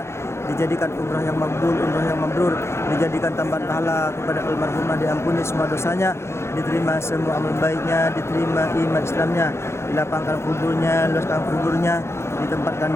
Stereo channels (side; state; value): right; late; 0.13 ms